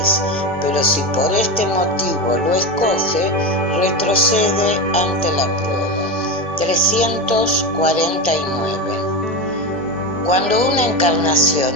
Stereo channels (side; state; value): both; normal; correlation 0.20